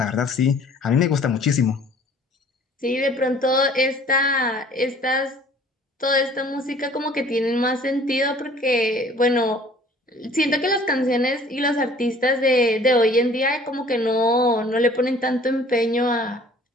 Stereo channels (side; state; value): both; normal; correlation 0.52